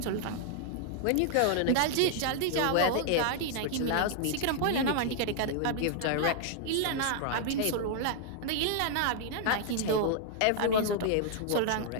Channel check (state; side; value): different; both; correlation 0.00